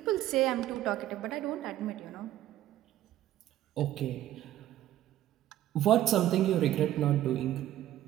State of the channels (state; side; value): quieter; left; 13.2 dB